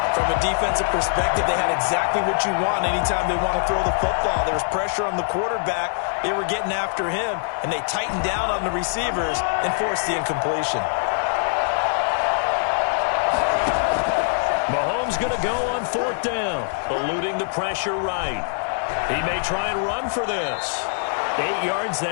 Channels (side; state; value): right; silent; 57 dB below the other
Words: From a defensive perspective, they had exactly what you want anytime they want to throw the football. There was pressure on the quarterback. They were getting after him, and they tightened down on the receivers and forced the incompletion. Mahomes going to go on 4th down, eluding the pressure right. He may try and run for this. 8 yards